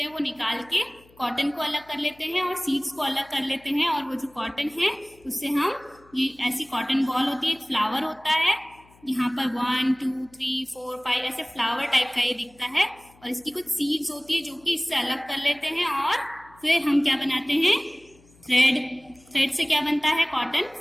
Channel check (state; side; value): noise; left; hum, 28 dB below the sound